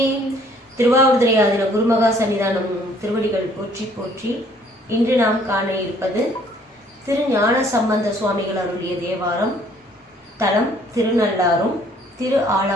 திருவாவூர்துறை ஆதீன குருமகா சன்னிதானம் திருவடிகள் போற்றி போற்றி. இன்று நாம் காண இருப்பது திரு ஞான சம்பந்த சுவாமிகள் அருளிய தேவாரம். தலம் திருநள்ளாறும் திரு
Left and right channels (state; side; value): normal; both; correlation 0.60